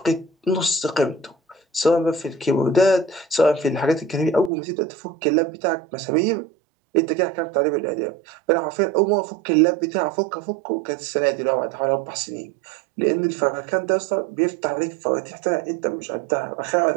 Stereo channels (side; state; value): left; drops out; at 4.5 s